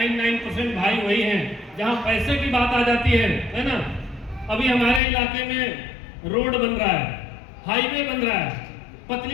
भाई वही हैं जहां पैसे की बात आ जाती है ना? अभी हमारे इलाके में रोड बन रहा है, हाईवे बन रहा है।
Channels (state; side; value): drops out; right; at 5.0 s